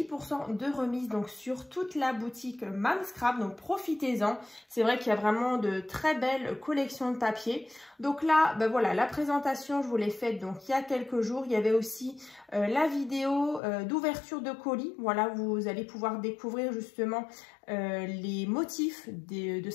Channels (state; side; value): drops out; right; at 13.6 s